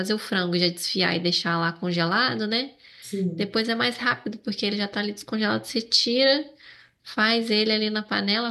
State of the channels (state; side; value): identical; both; correlation 1.00